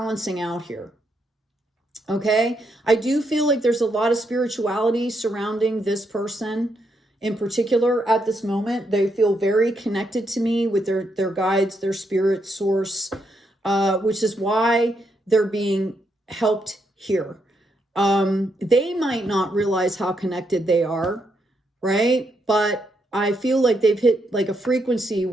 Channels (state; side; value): normal; both; correlation 0.79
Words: out here. Okay. I do feel like there's a lot of spirituality surrounding this person in particular at this moment. They feel very connected to me with their guides, their spirit source, which is why they're being helped here. They might not realize how connected they are, right? But I feel like they've hit like a frequency